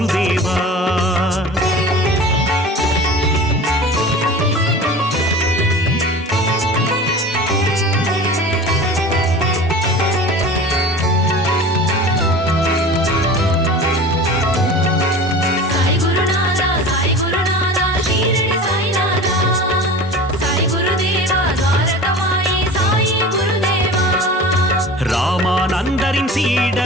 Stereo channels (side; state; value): both; normal; correlation 0.37